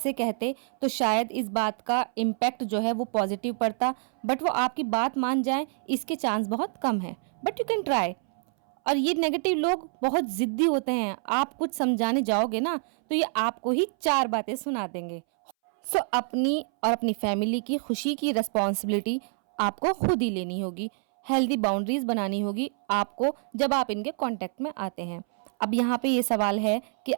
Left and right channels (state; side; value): silent; left; 60 dB below the other